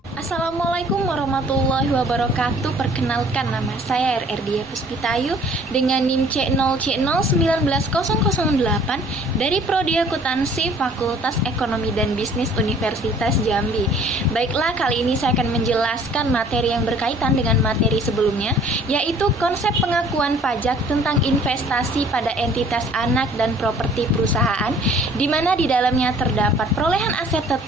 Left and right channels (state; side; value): normal; both; correlation 0.54